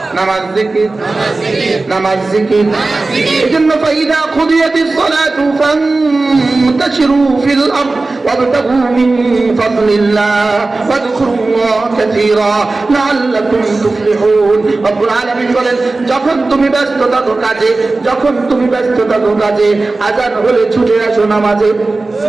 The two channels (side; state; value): left; quieter; 3.4 dB